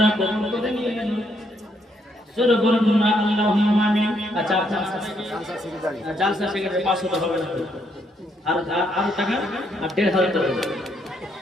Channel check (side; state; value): both; normal; correlation 0.74